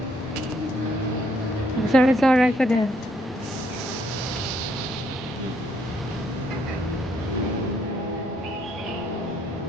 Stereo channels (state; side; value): noise; right; rumble, 23 dB below the sound